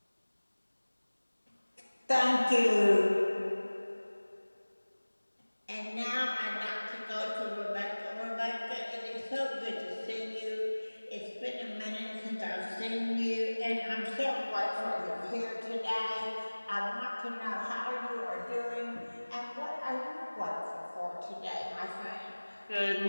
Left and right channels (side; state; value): both; inverted; correlation -1.00